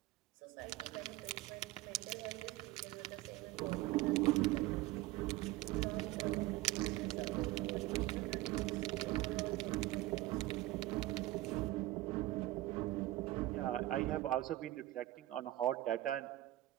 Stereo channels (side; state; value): left; quieter; 17.0 dB